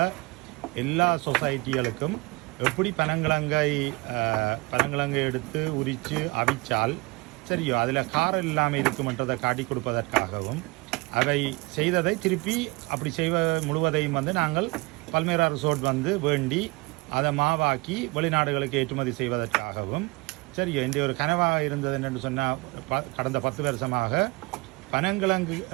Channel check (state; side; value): quieter; left; 25.3 dB